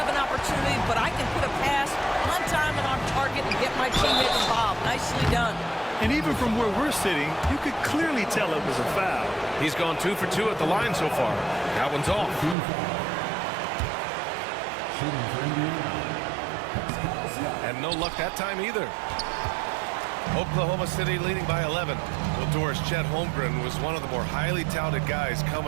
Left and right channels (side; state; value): left; drops out; at 12.6 s